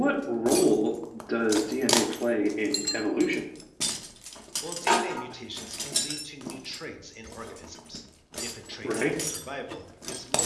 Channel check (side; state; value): both; identical; correlation 1.00